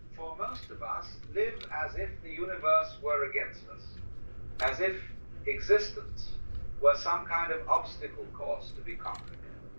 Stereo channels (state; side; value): inverted; both; correlation -1.00